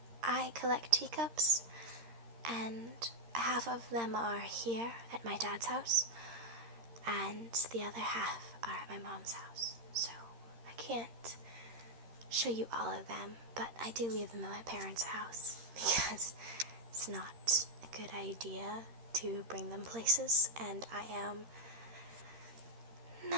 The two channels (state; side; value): late; left; 13 ms